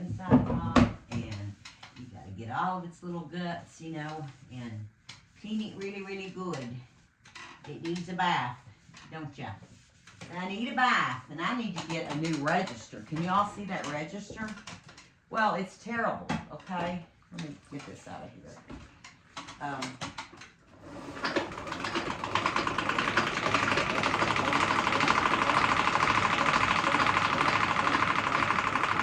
off, and you got to get all of its little guts, you know, and clean it really, really good. It needs a bath, don't ya? I need a bath, and I need to get a new register. Can you all see that register? Well, it's terrible, okay? Let me get this out of here.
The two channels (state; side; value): identical; both; correlation 1.00